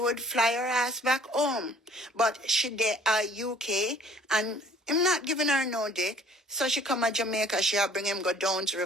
fly her ass back home. But she there UK, and I'm not giving her no dick. So she come to Jamaica, she'll bring him go down to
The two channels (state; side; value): normal; both; correlation 0.54